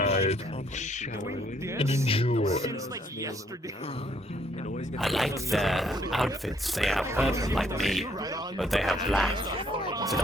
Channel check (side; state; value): both; normal; correlation 0.67